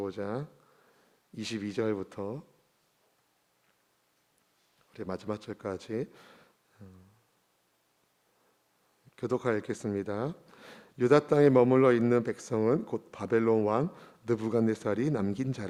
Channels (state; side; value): identical; both; correlation 1.00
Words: 22절부터 우리 마지막 절까지 교독하여 읽겠습니다. 유다 땅에 머물러 있는 백성은 곧 바벨론 왕 느부갓네살이 남긴